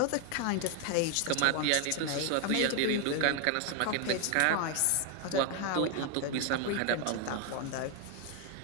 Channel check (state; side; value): different; both; correlation 0.01